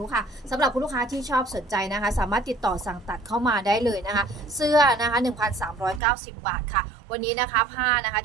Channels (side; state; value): left; drops out; at 6.0 s